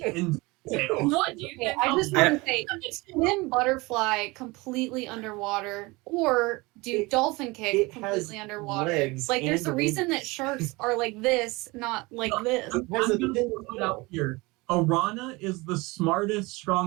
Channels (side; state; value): left; quieter; 23.8 dB